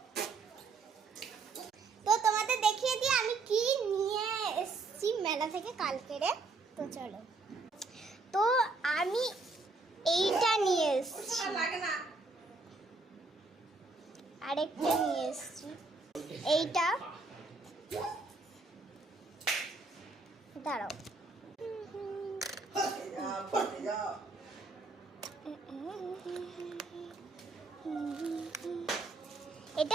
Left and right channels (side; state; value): left; quieter; 3.6 dB